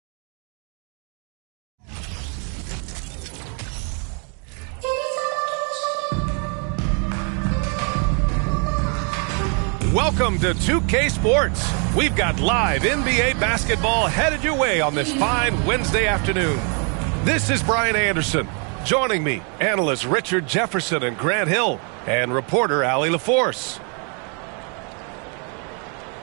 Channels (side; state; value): left; quieter; 38.1 dB